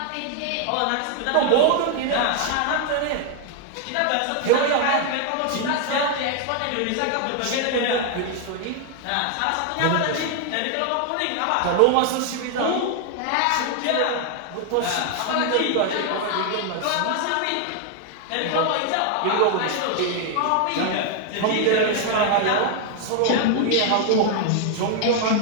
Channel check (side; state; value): both; different; correlation 0.00